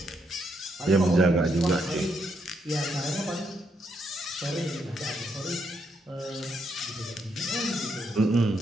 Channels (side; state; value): both; normal; correlation 0.78